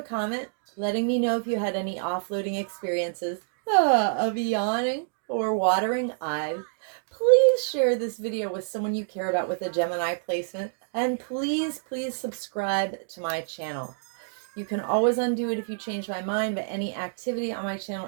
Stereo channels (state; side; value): silent; left; digital silence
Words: comment letting me know if you had any offloading experiences of yawning, or watering eyes, please share this video with someone you care about with a Gemini placement. And please, please subscribe to my channel. You can always undo it if you change my mind, but any activity on my